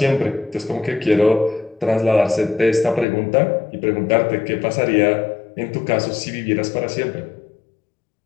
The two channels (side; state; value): right; drops out; at 3.1 s